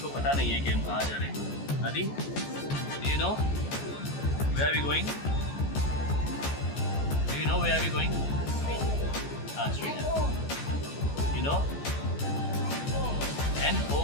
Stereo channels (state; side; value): late; right; 14 ms